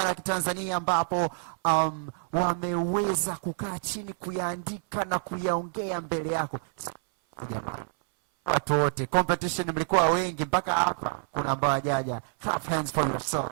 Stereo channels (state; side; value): silent; left; 59 dB below the other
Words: wa Kitanzania ambapo wameweza kukaa chini kuyaandika na kuyaongea mbele yako. Jamani, watu wote, competition mlikuwa wengi mpaka hapa kuna ambao hajaja. Clap hands for